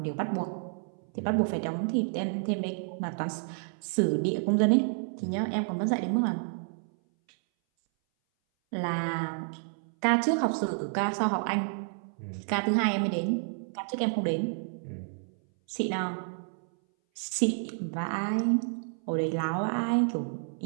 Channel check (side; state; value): left; silent; 58 dB below the other